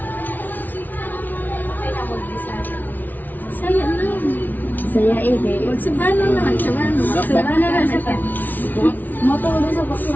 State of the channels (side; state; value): right; late; 0.082 ms